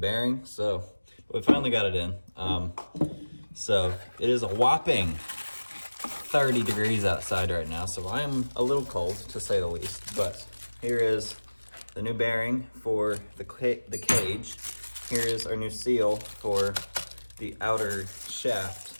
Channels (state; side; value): inverted; both; correlation -1.00